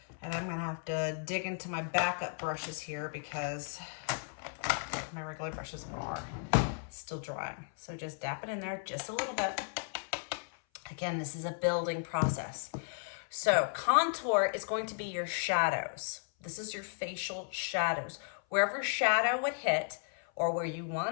And I'm gonna have to dig into my backup brushes here because my regular brushes are still drying. So just dap it in there just a little bit. Again, this is a building process. So contour is going to be your shadows. This is your facial shadows. Wherever shadow would hit, or where you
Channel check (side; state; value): right; silent; 55 dB below the other